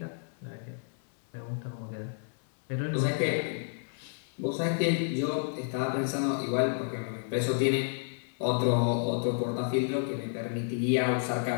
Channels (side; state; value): right; silent; 57 dB below the other